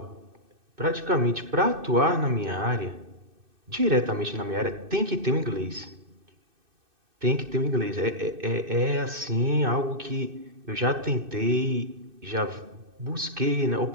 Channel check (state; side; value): late; left; 2.6 ms